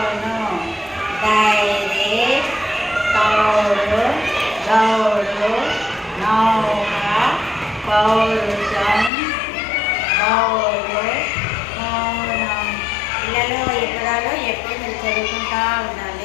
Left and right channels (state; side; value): drops out; right; at 9.1 s